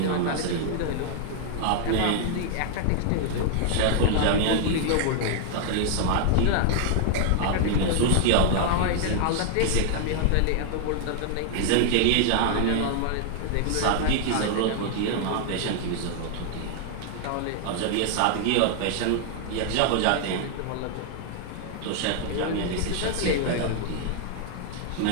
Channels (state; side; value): different; both; correlation 0.00